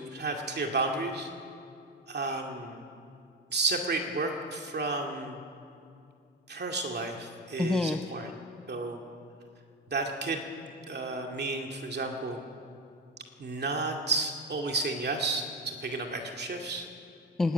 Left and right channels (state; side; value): normal; both; correlation 0.17